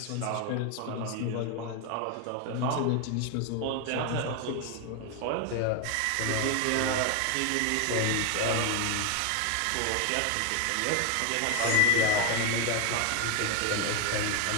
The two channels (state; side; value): different; both; correlation 0.01